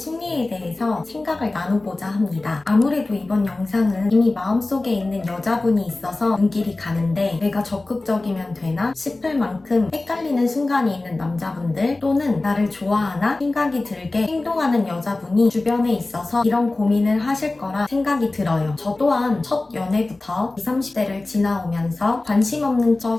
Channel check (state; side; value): quieter; right; 3.1 dB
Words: 대해서 생각을 나눠보자 합니다. 아무래도 이번 영상은 이미 마음속에 있는 여자분이 있어서 눈길이 가는데 내가 적극적이면 되나 싶을 만큼 헷갈리는 순간이 있는 남자분들 또는 나를 좋아하나 생각이 들게 행동하는 여자분이 주변에 있어서 이런 고민을 하실 거라 생각이 들어요. 저 또한 첫 연애부터 20, 30대를 지나오면서 관심 없는